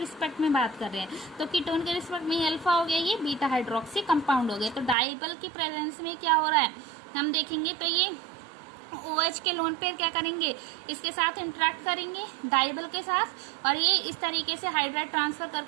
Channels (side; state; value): left; drops out; at 5.0 s